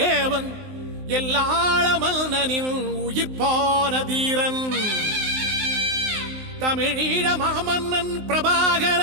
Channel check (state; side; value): late; left; 19 ms